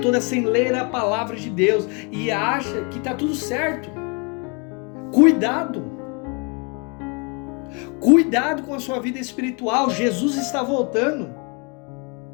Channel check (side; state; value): right; quieter; 33.2 dB